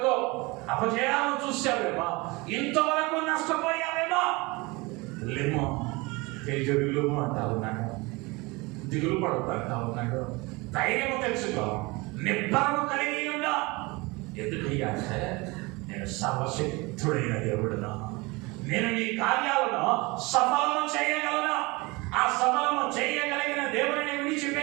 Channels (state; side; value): quieter; left; 24.7 dB